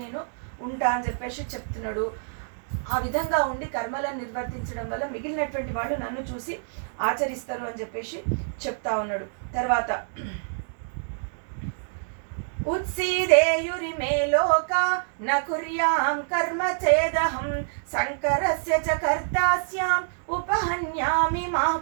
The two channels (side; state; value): left; silent; digital silence